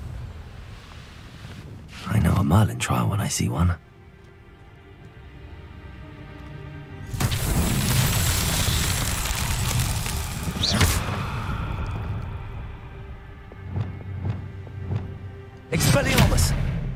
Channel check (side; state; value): both; identical; correlation 1.00